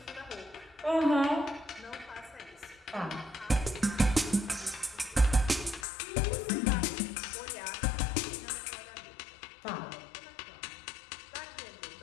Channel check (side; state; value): right; drops out; at 5.9 s